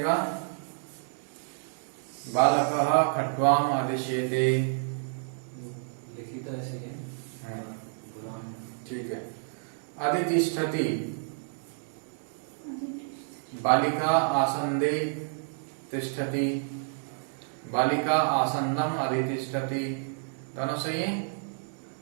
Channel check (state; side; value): silent; left; 58 dB below the other